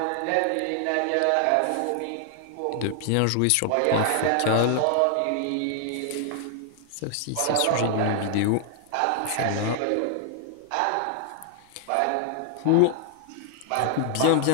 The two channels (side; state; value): both; different; correlation 0.00